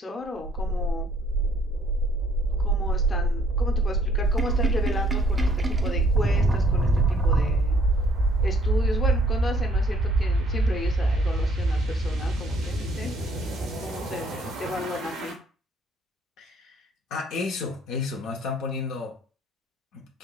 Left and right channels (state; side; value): normal; both; correlation 0.62